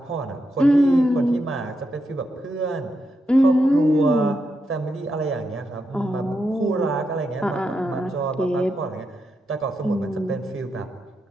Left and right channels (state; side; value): normal; both; correlation 0.84